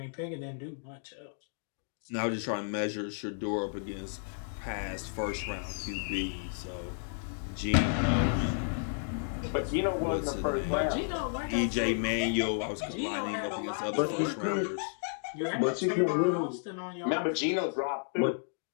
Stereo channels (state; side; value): silent; right; digital silence